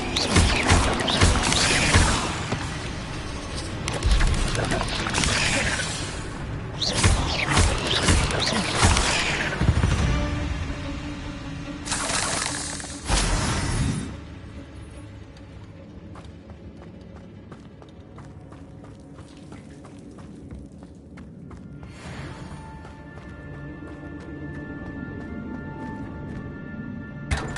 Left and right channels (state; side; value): identical; both; correlation 1.00